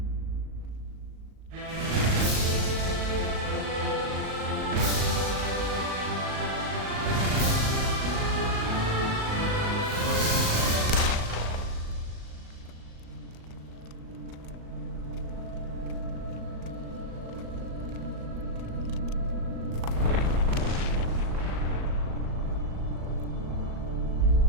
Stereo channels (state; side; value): late; left; 38 ms